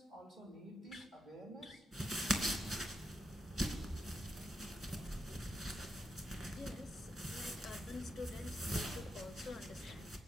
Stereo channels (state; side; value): normal; both; correlation 0.83